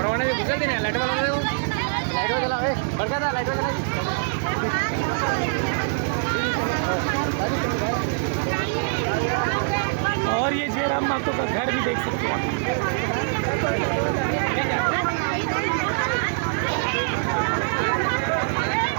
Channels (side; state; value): left; silent; 63 dB below the other